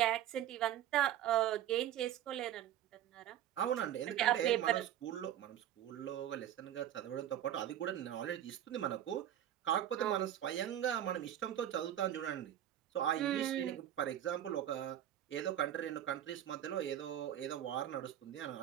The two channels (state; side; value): quieter; left; 11.5 dB